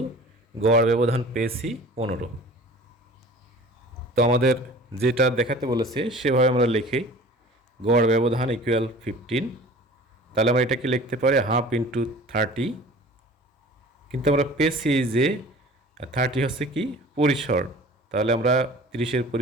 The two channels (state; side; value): normal; both; correlation 0.44